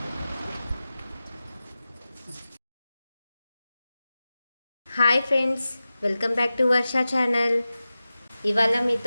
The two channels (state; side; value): inverted; both; correlation -0.95